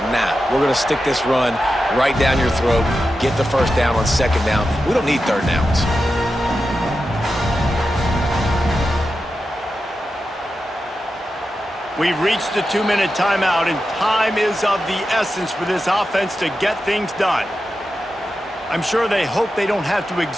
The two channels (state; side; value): normal; both; correlation 0.90